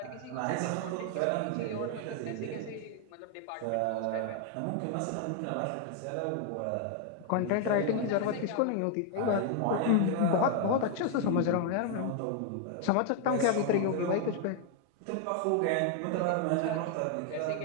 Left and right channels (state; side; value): different; both; correlation 0.00